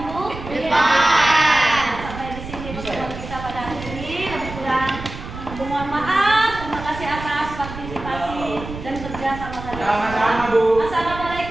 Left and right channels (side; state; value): right; noise; rumble, 11 dB below the sound